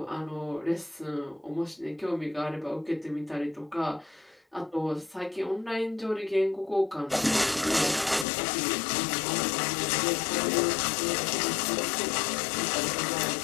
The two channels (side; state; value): right; drops out; at 8.2 s